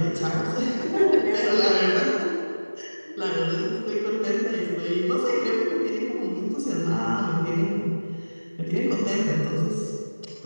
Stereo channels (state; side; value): inverted; both; correlation -1.00